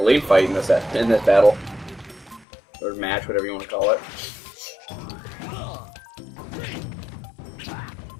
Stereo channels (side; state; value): right; drops out; at 2.5 s